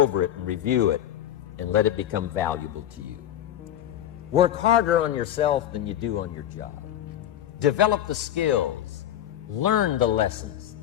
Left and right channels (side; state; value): right; quieter; 11.4 dB